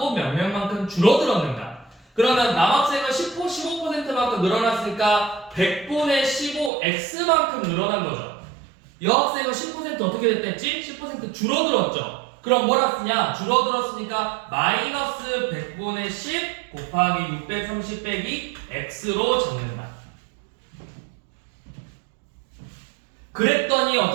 몇 명만큼 줄어들었는가. 그러면 남학생은 15%만큼 늘어났으니까 100분의 15x만큼 늘어난 거죠. 여학생은 10% 어떻게 됐댔지? 10% 줄어들었죠. 그럼 뭐라 쓰냐? 줄어들었으니까 마이너스 100분의 10 곱하기 630 빼기 x로 적는다. 그랬더니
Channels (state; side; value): drops out; left; at 6.7 s